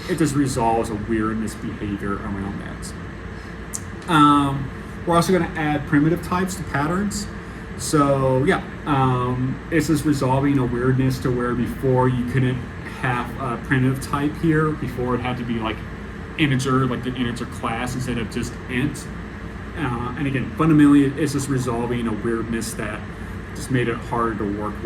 just resolves a weirdness behavior around that. We're also going to add primitive types to patterns. So yeah, it's just resolving a weirdness to where before you couldn't have a primitive type here. Before it had to be like integer, like the integer class instead of just int. And again, fundamentally, it's just resolving a weirdness that just made it harder to work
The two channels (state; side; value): identical; both; correlation 1.00